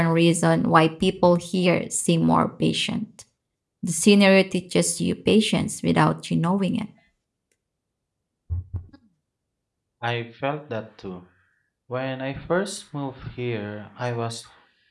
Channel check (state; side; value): identical; both; correlation 1.00